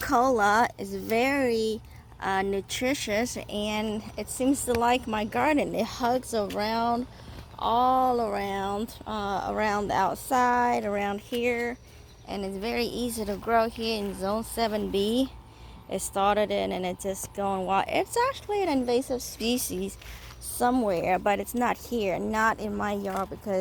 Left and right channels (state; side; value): identical; both; correlation 1.00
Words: It's very nutritious and it seems to like my garden. It hugs around, all around, around the outside, around here, and it's very easy to grow here in Zone 7B. It started in and it's just going wild. It's actually an invasive species somewhere, but it's not here, not in my yard,